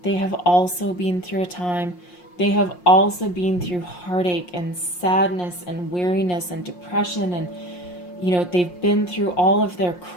they have also been through a time, they have also been through heartache and sadness and weariness and depression, and, they've been through all of their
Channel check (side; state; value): right; late; 5.6 ms